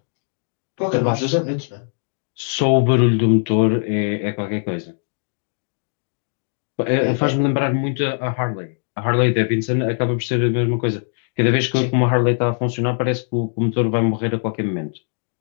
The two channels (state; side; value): silent; right; 65 dB below the other